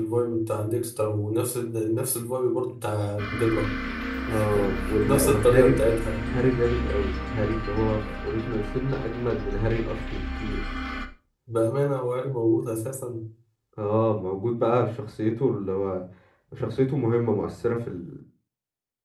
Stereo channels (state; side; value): identical; both; correlation 1.00